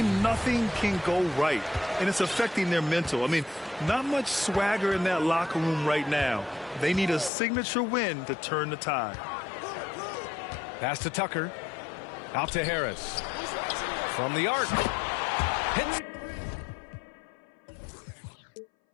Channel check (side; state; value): right; drops out; at 7.3 s